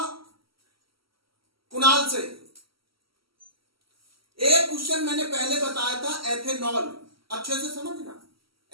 कुणाल से। एक क्वेश्चन मैंने पहले बताया था, एथेनॉल, अच्छे से समझना।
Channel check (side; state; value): left; late; 0.75 ms